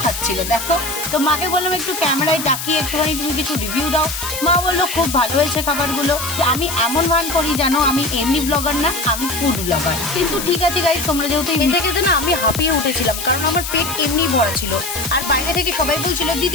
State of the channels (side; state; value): left; noise; hiss, 6 dB below the sound